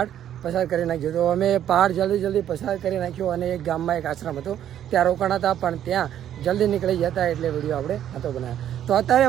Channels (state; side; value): quieter; left; 10.7 dB